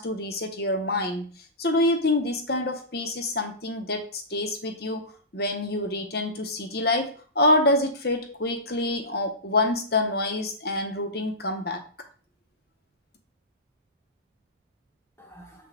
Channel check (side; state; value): both; normal; correlation -0.19